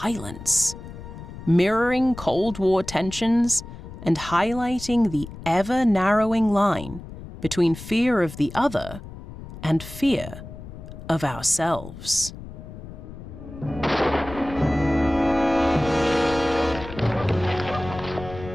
mirroring Cold War tensions and highlighting the ever-narrowing line between fear of the other and fear of ourselves.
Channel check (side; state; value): left; noise; rumble, 13 dB below the sound